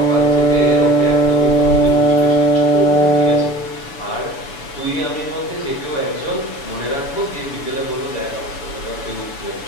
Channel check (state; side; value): late; right; 7.0 ms